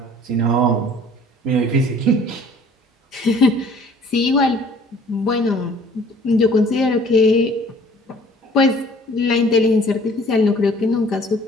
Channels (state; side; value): normal; both; correlation 0.53